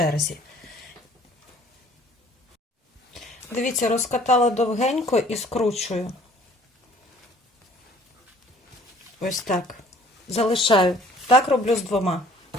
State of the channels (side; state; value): both; normal; correlation 0.55